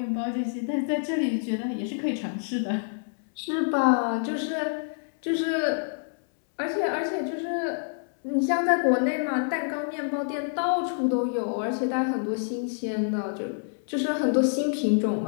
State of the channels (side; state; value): right; silent; 60 dB below the other